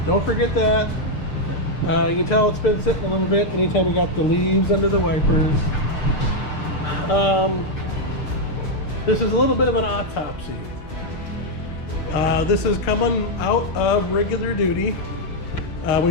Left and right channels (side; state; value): right; late; 6.7 ms